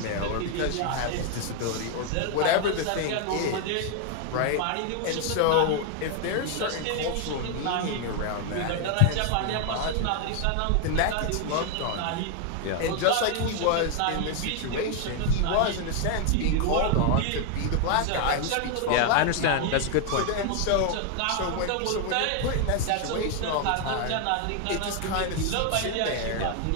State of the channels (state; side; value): different; both; correlation 0.00